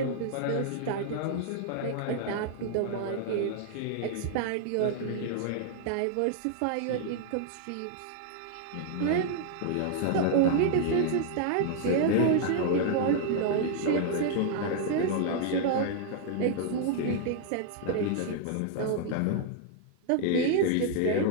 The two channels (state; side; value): different; both; correlation -0.01